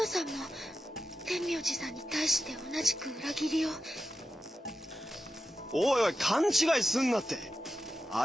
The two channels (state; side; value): normal; both; correlation 0.90